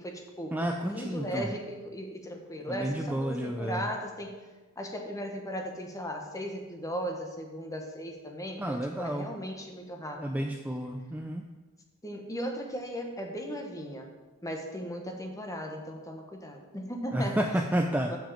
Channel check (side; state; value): both; normal; correlation 0.69